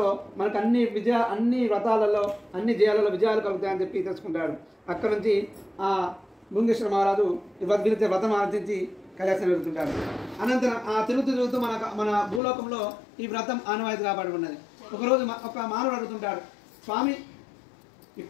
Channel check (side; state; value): right; drops out; at 12.4 s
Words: మనకు అన్ని వ్రతాలలో అన్ని జయాలలో విజయాలు కలుగుతాయని చెప్పి తెలుసుకుంటాడు. అక్కడ నుంచి ఆ భృంగేశ్వర మహారాజు వ్రతం ఆచరించి కైలాసం వెళ్తుంటాడు. అనంతరం ఆ తిరుగుతూ మన భూలోకంలో ఈ వ్రతం ఆనవాయితీ కాబడి ఉన్నది. ఒకరోజు ఒక మానవుడు అడుగుతుంటాడు, స్వామి